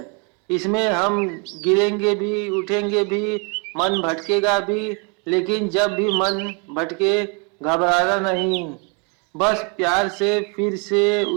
इसमें हम गिरेंगे भी, उठेंगे भी, मन भटकेगा भी, लेकिन जब भी मन भटके घबराना नहीं, बस प्यार से फिर से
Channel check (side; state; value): left; quieter; 34.1 dB